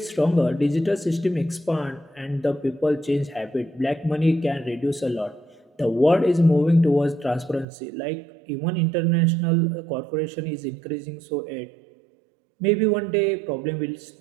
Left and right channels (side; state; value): left; drops out; at 7.7 s